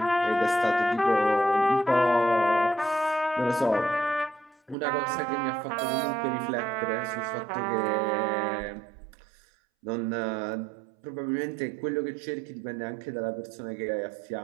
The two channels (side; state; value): left; drops out; at 4.8 s